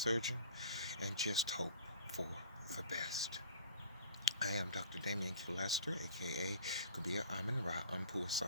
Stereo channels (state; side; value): inverted; both; correlation -0.46